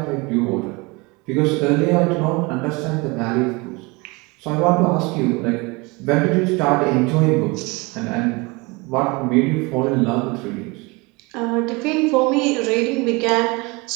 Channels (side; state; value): left; quieter; 26.1 dB